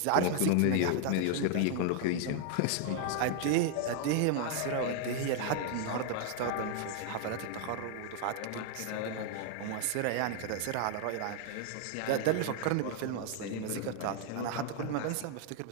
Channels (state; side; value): different; both; correlation 0.00